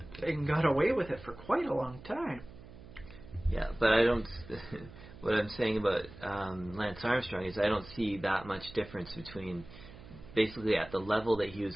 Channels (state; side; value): noise; right; hum, 17 dB below the sound